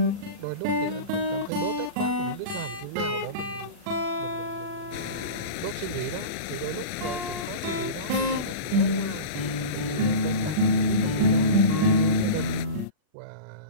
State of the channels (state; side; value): late; left; 40 ms